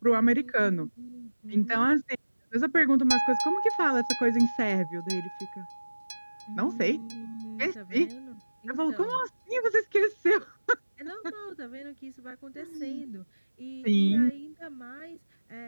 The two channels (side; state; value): both; inverted; correlation -1.00